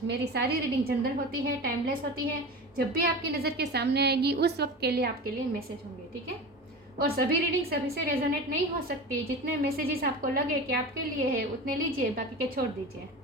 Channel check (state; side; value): normal; both; correlation 0.31